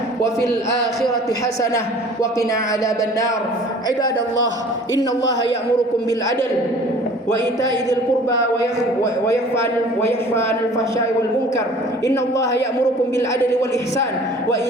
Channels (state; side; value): normal; both; correlation 0.48